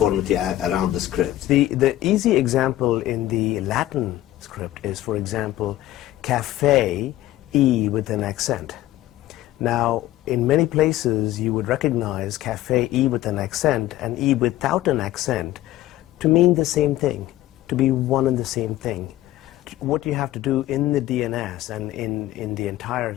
around the scripts. The easy example in the Latin script is, for example, cafe, E with an accent. Now, in many places you would recognize cafe, E with an accent, and E without an accent to mean the same thing, to be one and the same thing. What you have to do in the DNS and in the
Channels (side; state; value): right; quieter; 15.0 dB